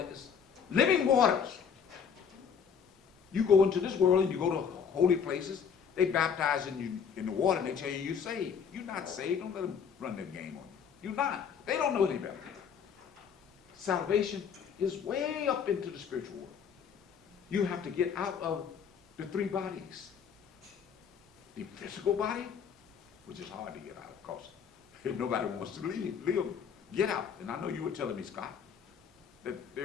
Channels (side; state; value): right; quieter; 7.1 dB